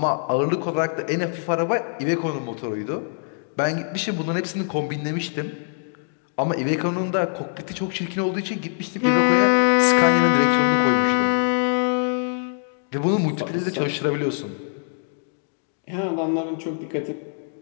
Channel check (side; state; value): right; silent; digital silence